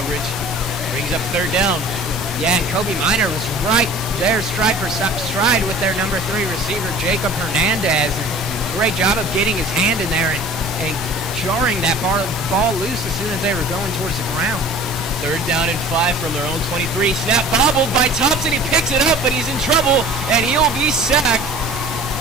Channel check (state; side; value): normal; both; correlation 0.45